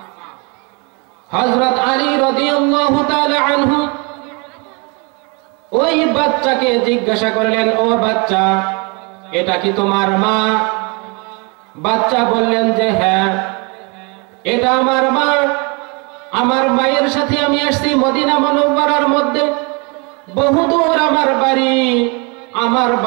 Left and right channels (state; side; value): quieter; left; 31.4 dB